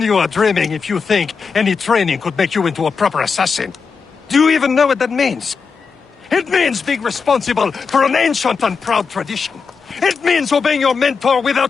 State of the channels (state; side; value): quieter; right; 5.3 dB